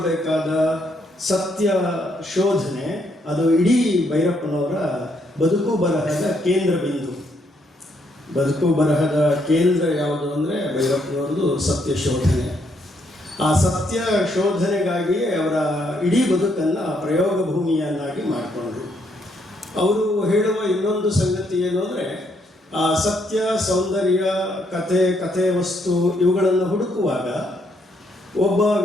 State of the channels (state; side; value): normal; both; correlation 0.74